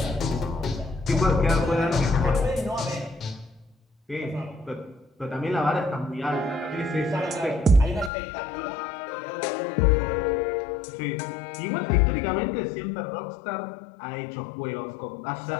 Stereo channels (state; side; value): drops out; right; at 8.1 s